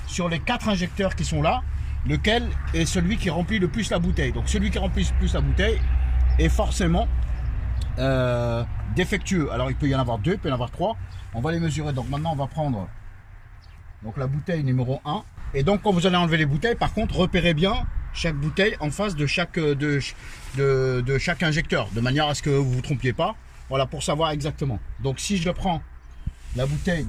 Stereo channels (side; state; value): both; identical; correlation 1.00